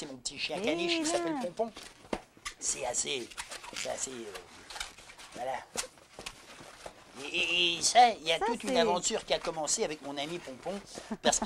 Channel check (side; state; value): both; identical; correlation 1.00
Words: mon petit chien caniche qui s'appelle Pompon. C'est assez... voilà. Et ça, il y a toute une aventure qui a commencé avec mon ami Pompon, parce